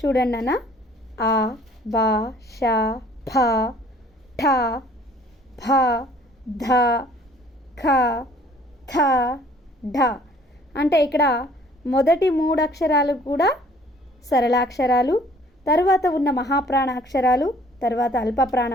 చూడండి అన్న, ఆ, బా, ష, భ, ఠ, భ, ధ, ఖ, థ, ఢ. అంటే ఇక్కడ మొదటి 3 అక్షరాలు కూడా సరళాక్షరాలు, తర్వాత ఉన్న మహాప్రాణ అక్షరాలు, తర్వాత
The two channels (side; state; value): both; normal; correlation 0.56